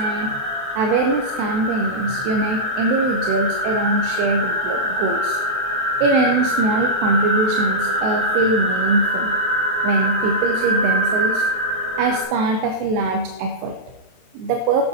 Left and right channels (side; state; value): left; late; 23 ms